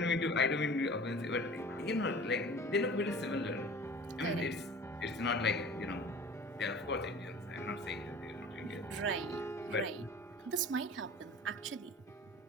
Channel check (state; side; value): normal; both; correlation 0.42